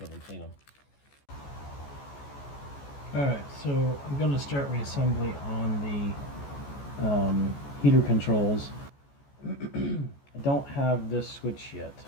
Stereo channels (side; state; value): right; late; 14 ms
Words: and clean them. Alright, so I'm going to start reassembly on the heater controls. I don't have this switch yet.